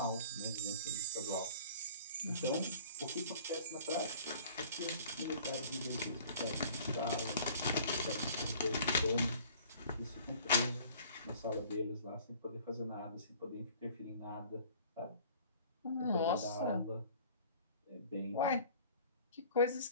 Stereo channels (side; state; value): both; inverted; correlation -0.50